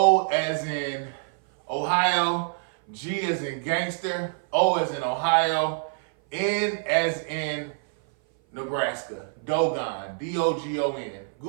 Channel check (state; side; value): silent; left; 57 dB below the other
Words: as in Ohio, G as in gangster, O as in Ohio, N as in Nebraska. Dogon, Dogon.